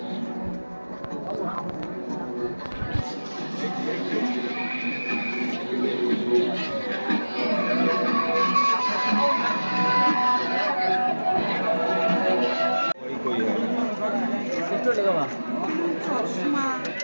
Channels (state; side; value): inverted; both; correlation -1.00